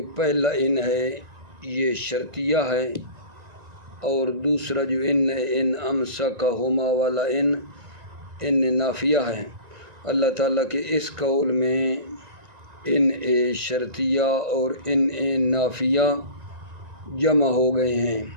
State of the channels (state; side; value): late; left; 1.5 ms